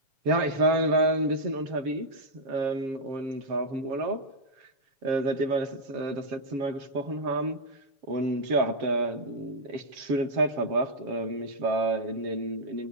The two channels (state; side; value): late; left; 7.1 ms